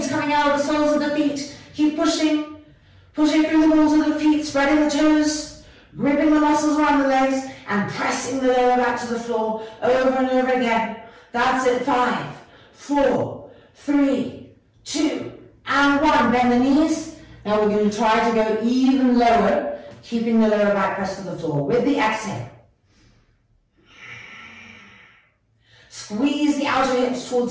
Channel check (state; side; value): identical; both; correlation 1.00